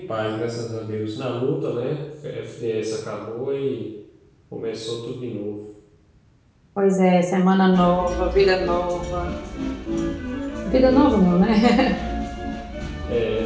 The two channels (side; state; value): both; identical; correlation 1.00